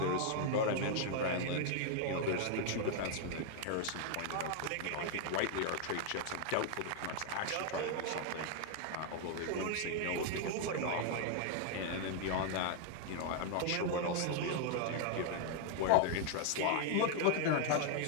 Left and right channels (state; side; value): different; both; correlation 0.00